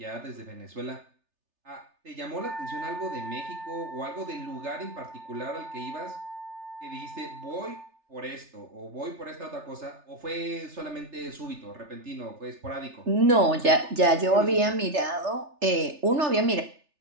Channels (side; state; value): left; late; 3.3 ms